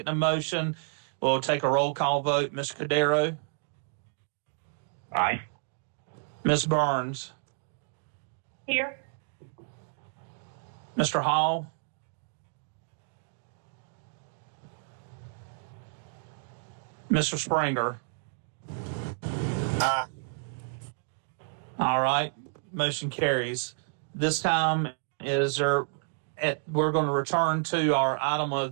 the motion. We'll take a roll call vote. Mr. Cordero? Aye. Ms. Burns? Here. Mr. Hall? Mr. Springer? Aye. All right, motion carries. This time we're going to return to our item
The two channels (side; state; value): left; silent; digital silence